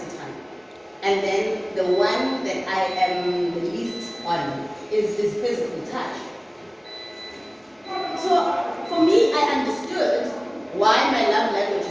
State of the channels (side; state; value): both; identical; correlation 1.00